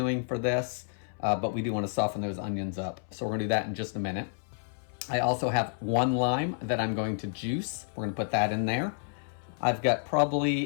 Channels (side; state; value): right; silent; 58 dB below the other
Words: for this. But we do want to soften those onions up. So we're going to do that in just a minute. I also have 1 lime that I'm going to juice. We're going to put that in there. I've got